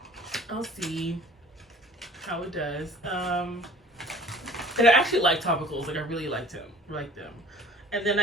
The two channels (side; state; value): both; normal; correlation 0.48